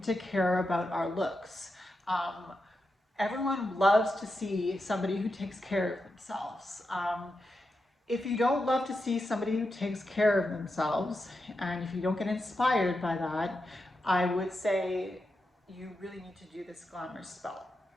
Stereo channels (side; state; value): both; normal; correlation 0.88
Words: to care about our looks. Everyone loves to see somebody who takes care of themselves. If you don't love to see somebody who takes care of themselves, and if you don't get inspired by that, I would say you really need to do this glamour spell,